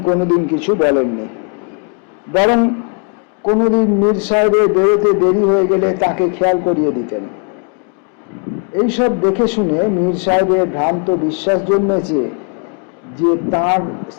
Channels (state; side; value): quieter; right; 39.8 dB